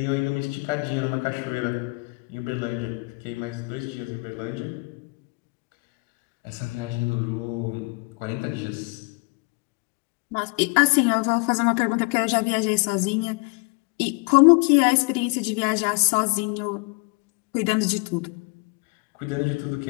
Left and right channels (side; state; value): right; quieter; 31.6 dB